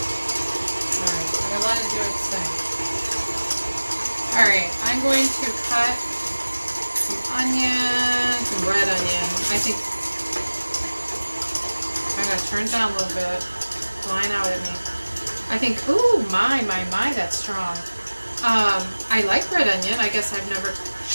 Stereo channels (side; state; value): both; inverted; correlation -1.00